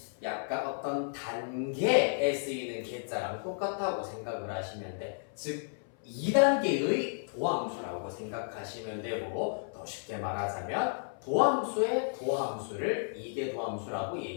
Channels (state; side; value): silent; right; 55 dB below the other